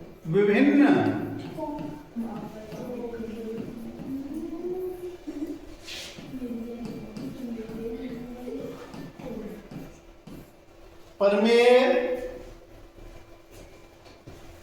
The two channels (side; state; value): both; identical; correlation 1.00